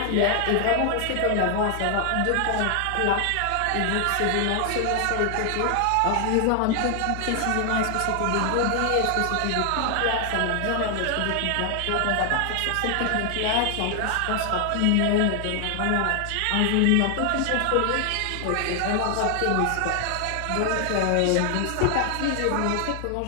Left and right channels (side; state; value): both; different; correlation 0.00